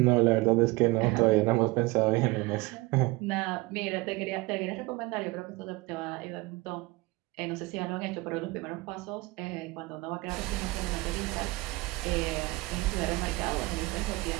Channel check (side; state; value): left; quieter; 22.4 dB